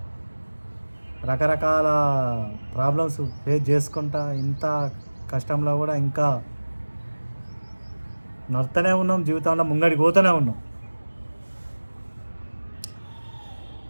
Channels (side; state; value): both; inverted; correlation -1.00